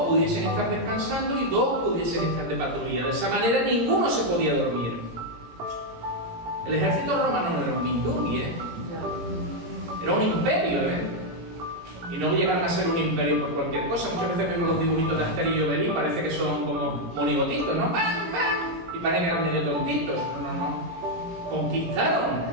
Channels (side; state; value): left; late; 17 ms